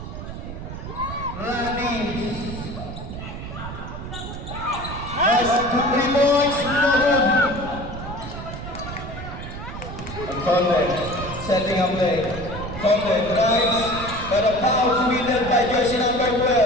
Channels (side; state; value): right; noise; rumble, 9 dB below the sound